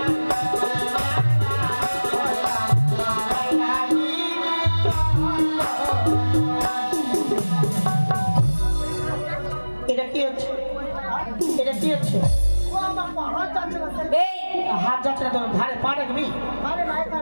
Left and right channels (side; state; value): both; inverted; correlation -1.00